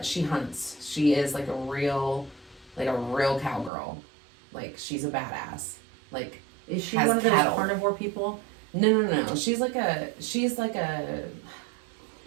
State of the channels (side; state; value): left; drops out; at 3.7 s